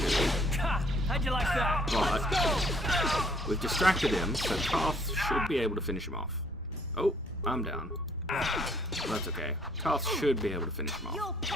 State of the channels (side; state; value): both; normal; correlation 0.64